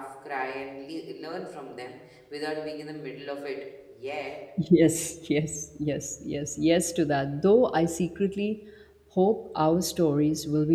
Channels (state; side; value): identical; both; correlation 1.00